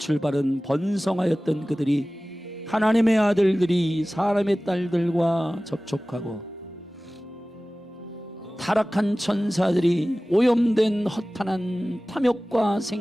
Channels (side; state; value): both; normal; correlation 0.97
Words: 번성하였던 그들이 하나님의 아들들이 사람의 딸들과 접촉하고 타락한 천사들이 오염된 허탄한 탐욕과